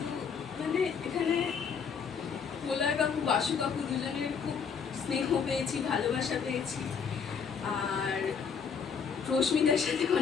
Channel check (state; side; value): quieter; right; 6.3 dB